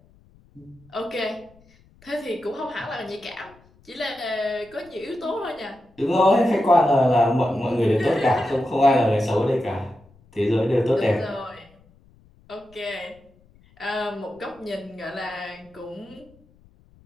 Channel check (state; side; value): noise; left; rumble, 29 dB below the sound